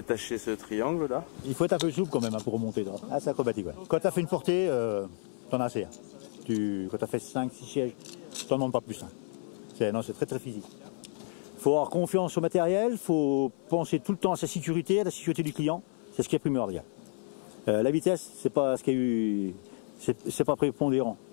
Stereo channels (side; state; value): right; silent; 57 dB below the other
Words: ce triangle là. Il faut être un peu souple quand même hein, pour remonter. Ah, c'est acrobatique. Ouais. Quand tu as fait une portée, t'en as assez. Hein. Quand tu as fait 5-6 sièges, t'en demandes pas plus. Hein. C'est très très physique. Il faut avoir confiance au matériel, il faut penser tout le temps à sa sécurité, à la sécurité du client. C'est ce qui est primordial. La vitesse, c'est pas ce qu'il y a eu, c'est pas prépondérant.